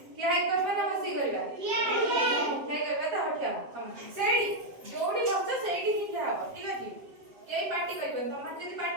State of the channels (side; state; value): left; late; 7.5 ms